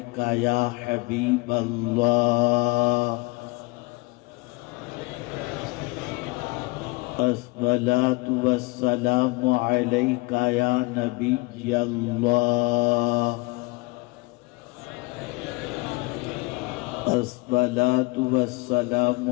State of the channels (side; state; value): right; quieter; 25.1 dB